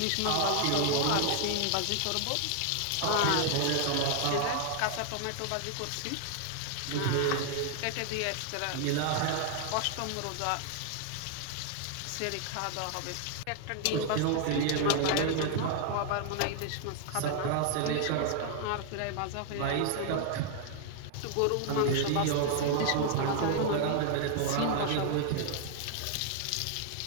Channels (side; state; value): both; different; correlation 0.00